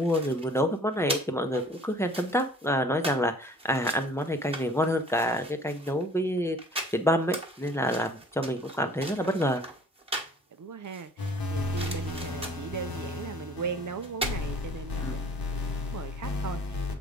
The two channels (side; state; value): both; normal; correlation 0.52